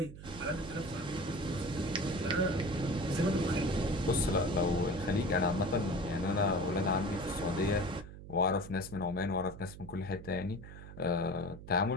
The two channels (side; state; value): right; noise; hum, 14 dB below the sound